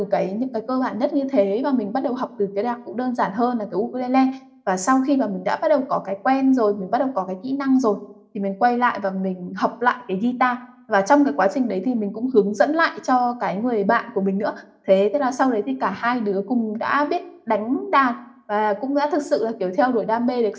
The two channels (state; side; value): identical; both; correlation 1.00